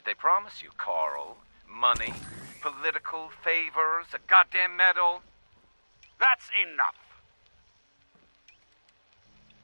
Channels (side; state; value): both; inverted; correlation -1.00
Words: they promise you, Carl? Money? Political favors? A goddamn medal? That's enough.